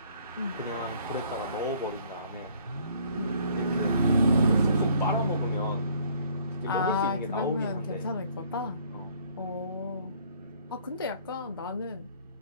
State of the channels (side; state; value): both; inverted; correlation -0.58